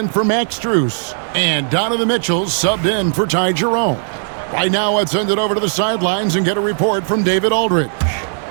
for Max Strus. And Donovan Mitchell subbed in for Ty Jerome. Right now, let's send it over to the sidelines and get a report from David Aldridge.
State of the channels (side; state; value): left; silent; 68 dB below the other